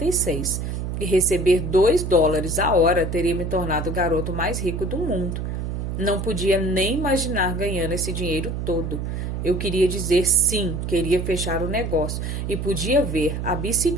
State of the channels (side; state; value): right; noise; hum, 3 dB below the sound